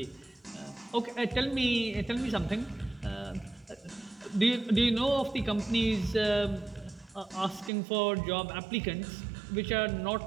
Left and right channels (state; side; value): drops out; left; at 7.7 s